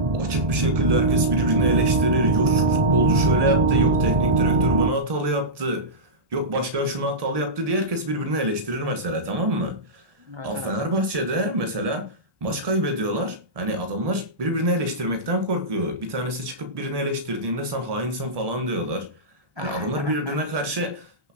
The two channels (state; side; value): late; left; 1.7 ms